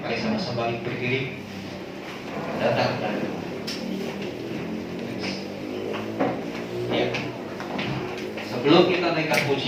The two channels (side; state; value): both; identical; correlation 1.00